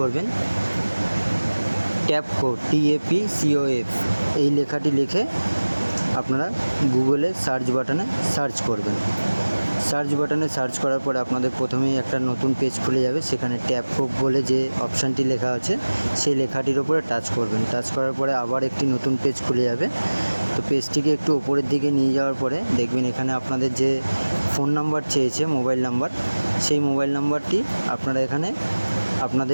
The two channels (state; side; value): inverted; both; correlation -1.00